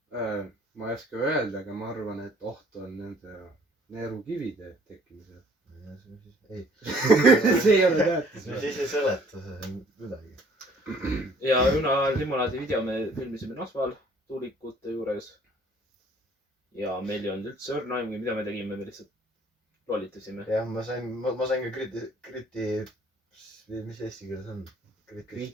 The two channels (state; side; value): normal; both; correlation 0.57